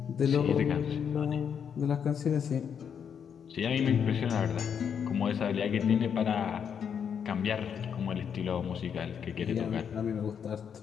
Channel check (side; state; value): right; quieter; 7.6 dB